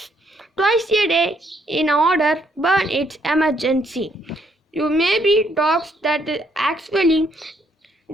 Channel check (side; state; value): both; normal; correlation 0.71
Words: twice a day in order burn its emergency. You may be dogs that actually